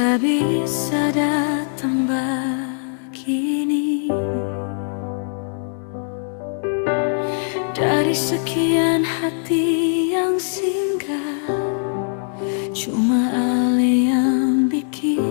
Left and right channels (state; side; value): silent; right; 65 dB below the other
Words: bisa datang begini. Dari sekian hati yang singgah, cuma ale yang